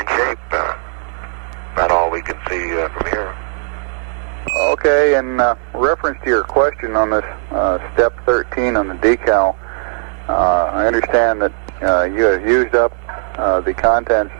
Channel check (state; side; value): silent; left; digital silence